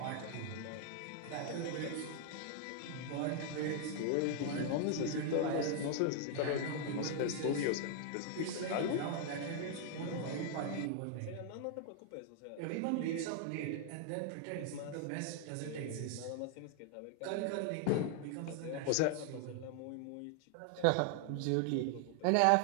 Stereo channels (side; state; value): both; different; correlation 0.00